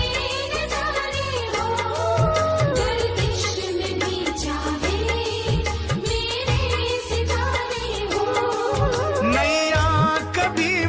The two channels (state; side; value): identical; both; correlation 1.00